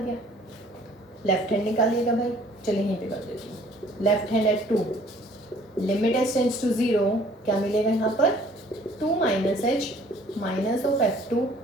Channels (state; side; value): normal; both; correlation 0.56